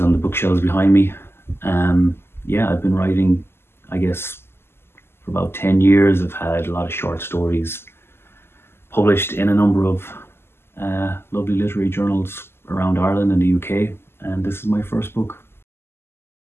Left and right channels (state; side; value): late; right; 0.12 ms